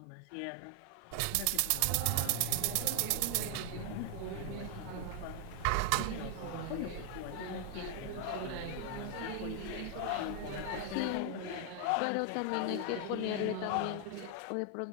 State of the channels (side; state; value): both; different; correlation 0.00